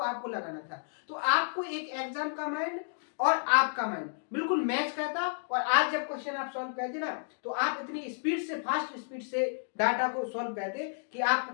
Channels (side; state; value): right; silent; digital silence